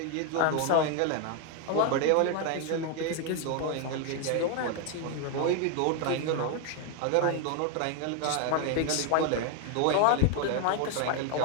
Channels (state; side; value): different; both; correlation 0.01